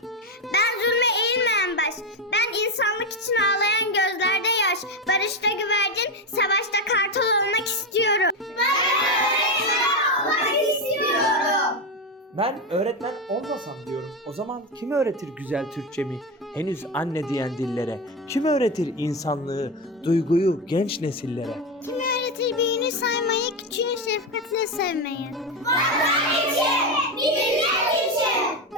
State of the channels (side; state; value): both; normal; correlation 0.13